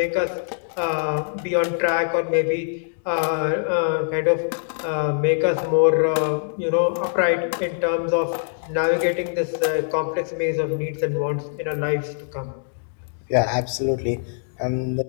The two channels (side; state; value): right; silent; digital silence